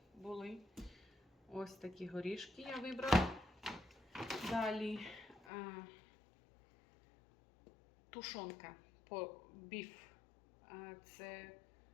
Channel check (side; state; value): right; drops out; at 5.5 s